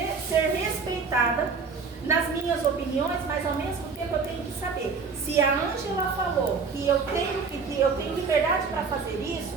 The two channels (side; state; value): left; quieter; 5.0 dB